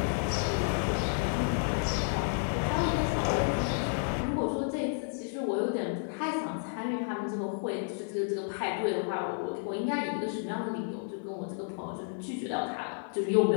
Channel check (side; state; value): right; silent; 57 dB below the other